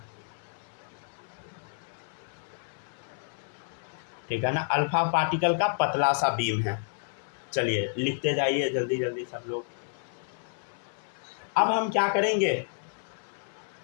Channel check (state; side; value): silent; right; 56 dB below the other